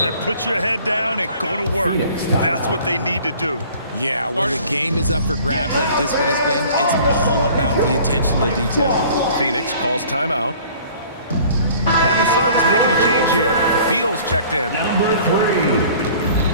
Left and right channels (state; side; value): inverted; both; correlation -0.50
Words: Put your head down and go to work. That's what they need to do. Yeah, when the game is up for grabs like this one has been, it's all about the attention to detail. Phoenix calls timeout. And the Suns making a change here. Beal's checked in.